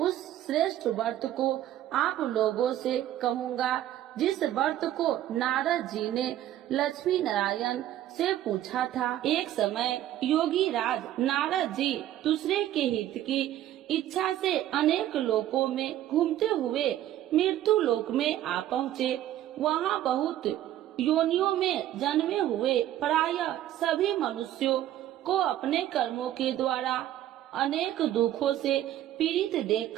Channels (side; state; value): left; quieter; 12.7 dB